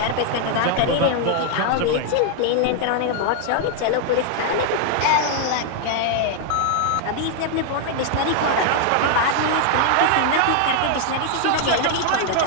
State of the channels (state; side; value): different; both; correlation 0.00